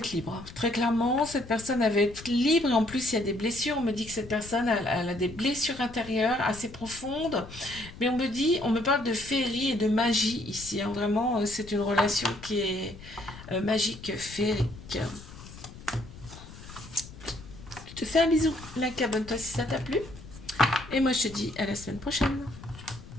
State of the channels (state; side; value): noise; left; rumble, 16 dB below the sound